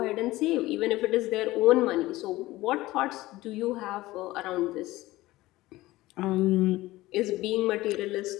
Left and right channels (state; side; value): quieter; right; 18.0 dB